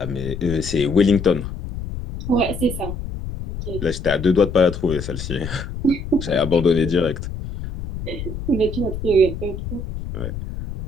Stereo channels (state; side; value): noise; left; rumble, 7 dB below the sound